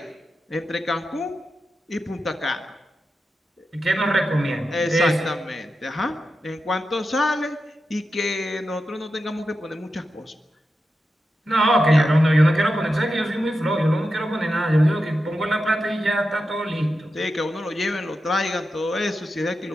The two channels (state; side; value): normal; both; correlation 0.90